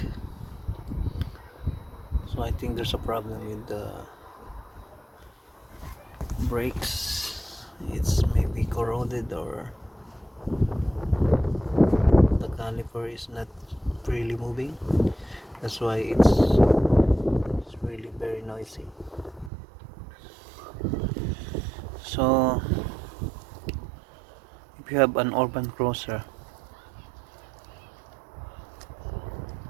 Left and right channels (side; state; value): left; drops out; at 19.5 s